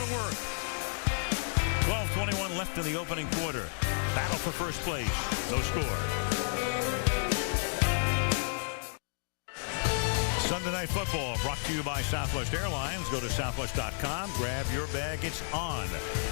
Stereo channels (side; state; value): right; silent; digital silence